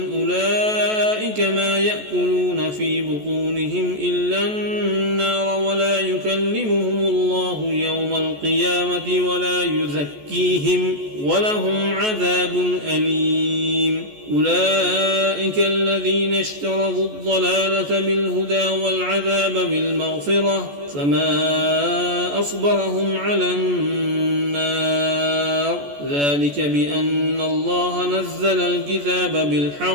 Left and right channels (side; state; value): left; late; 14 ms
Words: أولئك ما يأكلون في بطونهم إلا النار ولا يكلمون القيامة ولا يزكيهم ولهم عذاب أليم. أولئك الذين اشتروا الضلالة بالهدى والعذاب بالمغفرة فما أصبرهم على النار ذلك بأن الله نزل الكتاب